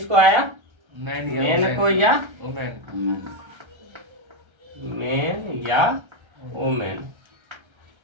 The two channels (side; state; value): left; late; 1.3 ms